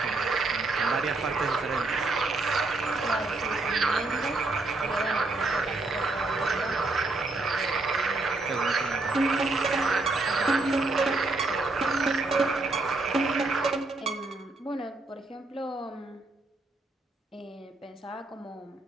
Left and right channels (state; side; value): quieter; left; 3.2 dB